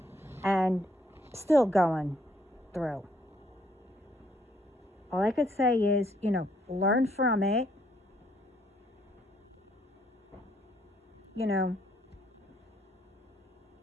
And still going through. All I could say is, learn from it.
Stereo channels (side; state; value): both; normal; correlation 0.69